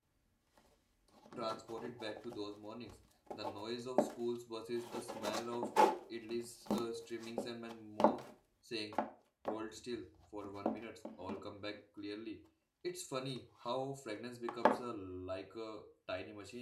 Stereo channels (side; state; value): both; identical; correlation 1.00